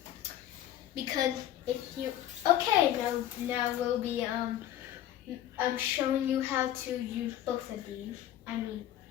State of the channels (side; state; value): right; quieter; 12.2 dB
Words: Because if you now we'll be showing you how to use both of these.